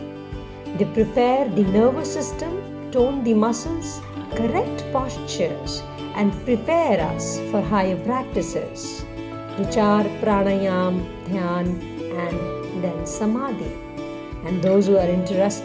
They prepare the nervous system, tone the muscles, correct postures, and prepare us for higher practices, which are Pranayama, Dhyana, and then Samadhi. And those who are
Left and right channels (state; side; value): identical; both; correlation 1.00